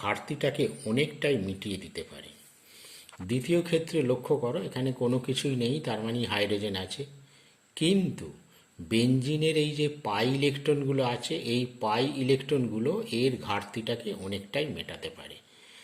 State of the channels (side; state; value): both; identical; correlation 1.00